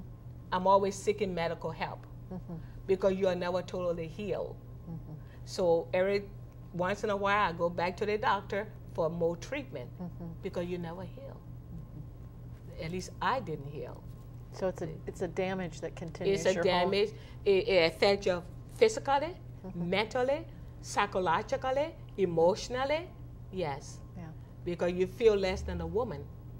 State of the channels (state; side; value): identical; both; correlation 1.00